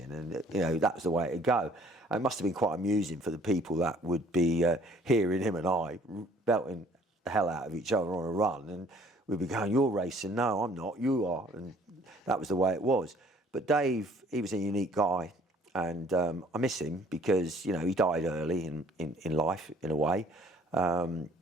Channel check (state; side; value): normal; both; correlation 0.57